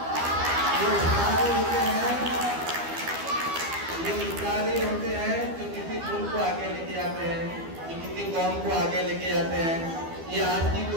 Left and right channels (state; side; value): late; left; 12 ms